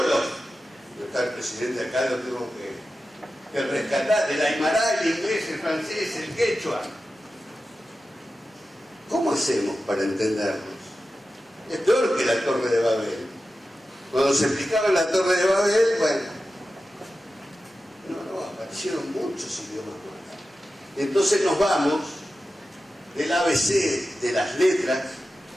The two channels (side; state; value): both; normal; correlation 0.93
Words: Yo está el presidente acá, lo tengo que rescatar, del aymara, el inglés, el francés, el quechua. ¿Cómo hacemos para entendernos? Es peor que la Torre de Babel. Cuando se explicaba la Torre de Babel, bueno, no, aparecieron muchos idiomas más. Entonces nos vamos del ABC de las letras,